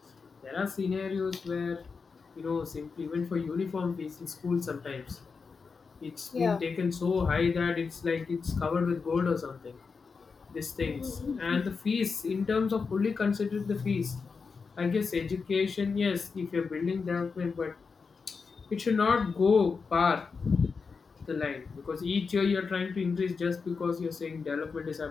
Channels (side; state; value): right; quieter; 5.0 dB